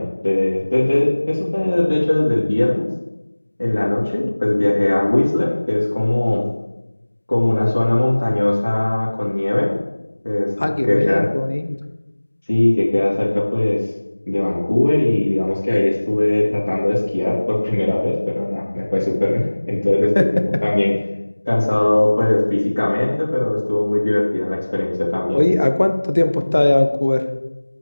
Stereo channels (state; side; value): inverted; both; correlation -1.00